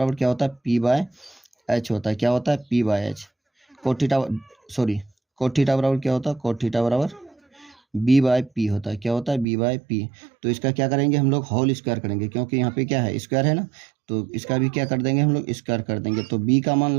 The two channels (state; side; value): drops out; left; at 9.5 s